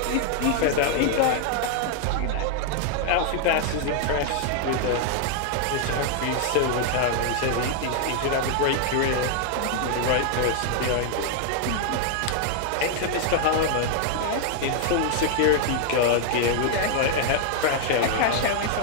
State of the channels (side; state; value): both; different; correlation 0.00